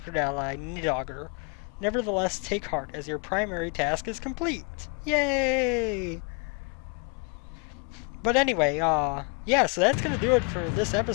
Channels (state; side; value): quieter; right; 35.8 dB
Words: ally, Nidogger. Nevertheless, take heart, as your primary task is complete. Yay! But anyway, yeah, so that's gonna do it for this